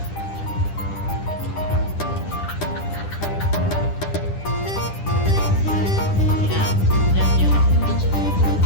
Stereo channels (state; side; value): late; right; 10 ms